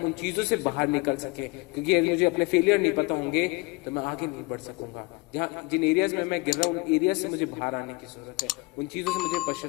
उन चीजों से बाहर निकल सके। क्योंकि यदि मुझे अपने फेलियर नहीं पता होंगे तो मैं आगे नहीं बढ़ सकूंगा। जिन एरियाज में मैं गिर रहा हूँ, उन एरिया से मुझे बाहर आने की जरूरत है, उन चीजों से मुझे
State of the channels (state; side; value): quieter; right; 26.4 dB